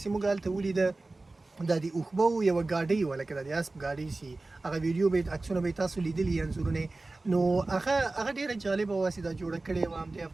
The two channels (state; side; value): quieter; left; 3.2 dB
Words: چې موږ هلته ولیده دا د اوښبو یوه ګاډۍ وه، لکه د اسب ګاډۍ چې هغه ویډیو به عکسونه به یې تاسو لیدلي انځورونه، نو هغه ډېره جالبه وه چې دا جوړه کړې وه همدې